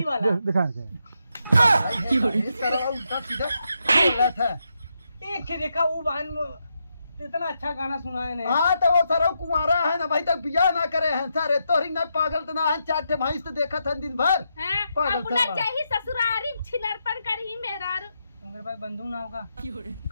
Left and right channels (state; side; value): inverted; both; correlation -0.83